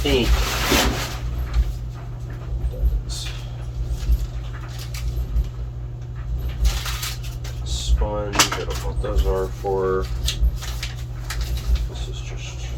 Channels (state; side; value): identical; both; correlation 1.00